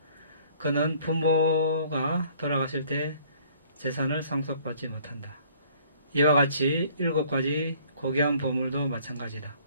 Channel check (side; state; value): both; inverted; correlation -0.57